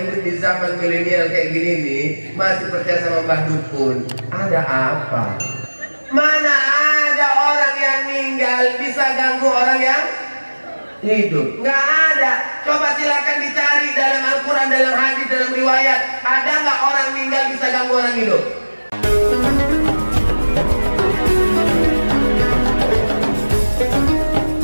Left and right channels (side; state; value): both; inverted; correlation -1.00